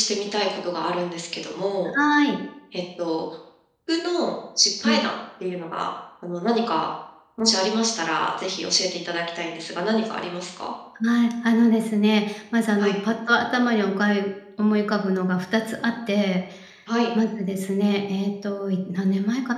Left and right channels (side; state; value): both; identical; correlation 1.00